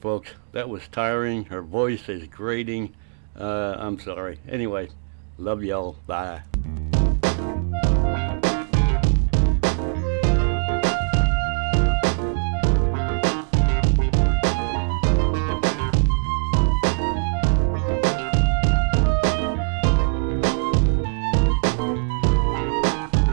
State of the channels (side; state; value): left; silent; digital silence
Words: That was tiring. Her voice is grating. I'm sorry. Anyway, love y'all. Bye.